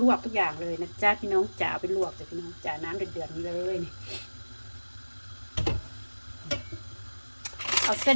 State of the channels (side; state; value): both; inverted; correlation -1.00